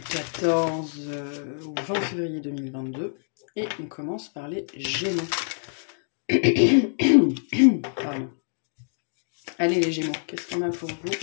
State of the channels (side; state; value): right; silent; digital silence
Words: 14 au 20 février 2022. Et on commence par les Gémeaux. Pardon. Allez les Gémeaux, qu'est-ce qu'on a pour vous